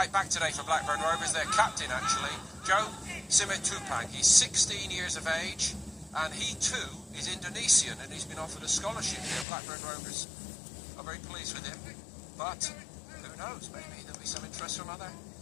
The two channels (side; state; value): right; drops out; at 9.5 s